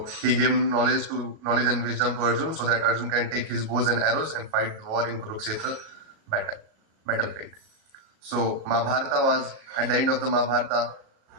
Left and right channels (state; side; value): late; left; 37 ms